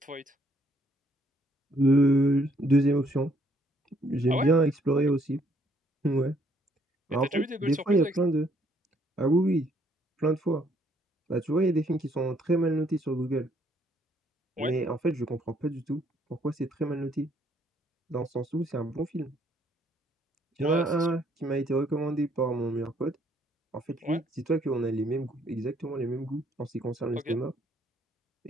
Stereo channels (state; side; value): normal; both; correlation 0.67